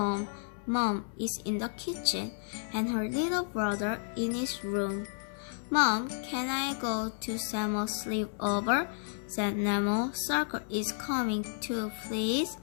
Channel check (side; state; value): right; silent; 56 dB below the other